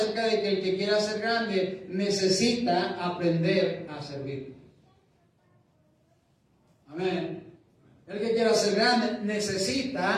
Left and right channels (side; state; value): both; identical; correlation 1.00